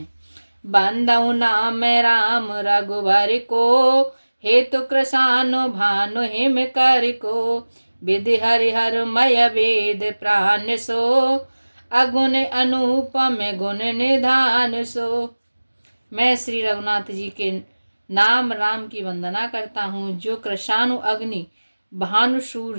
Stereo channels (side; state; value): both; inverted; correlation -1.00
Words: बंदहु नाम राम रघुबर को, हेतु कृशानु भानु हिम कर को। विधि हरिहर मय वेद प्राण सो, अगुण अनुपम गुण निधान सो। मैं श्री रघुनाथ जी के नाम राम की वंदना करता हूँ, जो कृशानु अग्नि, भानु